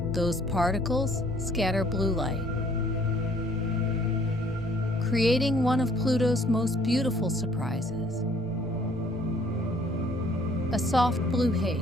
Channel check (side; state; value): right; noise; rumble, 20 dB below the sound